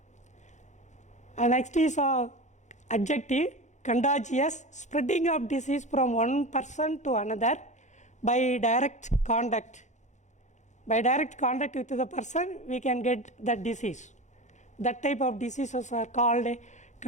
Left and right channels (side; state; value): right; late; 0.35 ms